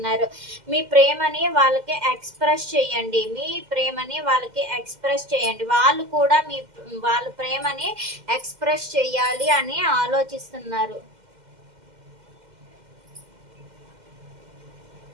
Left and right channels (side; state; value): left; late; 2.1 ms